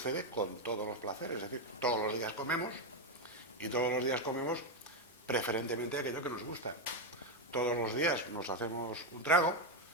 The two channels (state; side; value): normal; both; correlation 0.06